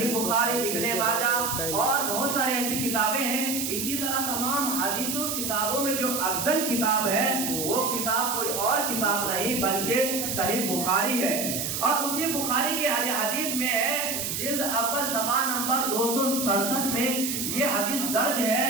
بخاری، ابن ماجہ اور بہت سارے ایسی کتابیں ہیں۔ اسی طرح تمام حدیثوں کتابوں میں جو افضل کتاب ہے وہ کتاب کوئی اور کتاب نہیں بلکہ صحیح بخاری ہے۔ اور اسی بخاری کے حدیث میں ہے، جلد اول صفحہ نمبر 267 میں یہ حدیث درج ہے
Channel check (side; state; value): right; noise; hiss, 2 dB below the sound